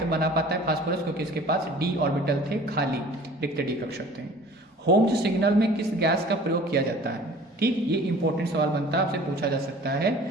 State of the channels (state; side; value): normal; both; correlation 0.47